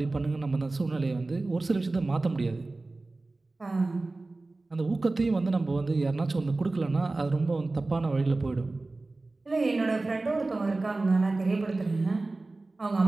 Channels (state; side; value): quieter; left; 3.2 dB